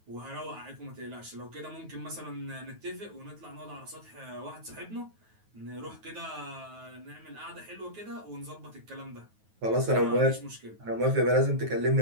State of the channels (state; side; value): late; left; 9.3 ms